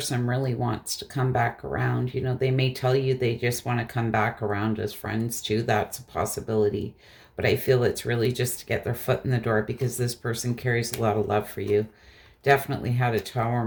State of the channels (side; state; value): both; identical; correlation 1.00